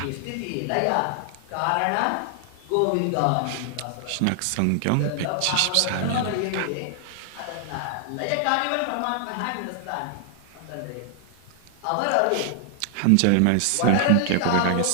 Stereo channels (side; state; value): both; different; correlation 0.00